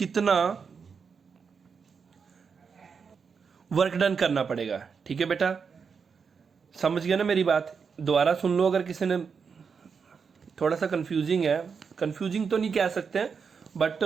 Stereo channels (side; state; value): left; quieter; 5.9 dB